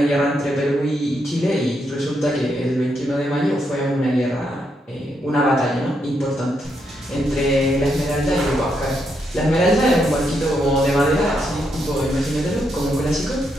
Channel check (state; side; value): normal; both; correlation 0.79